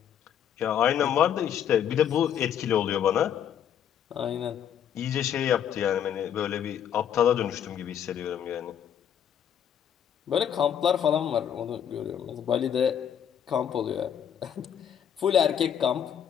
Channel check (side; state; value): right; quieter; 9.1 dB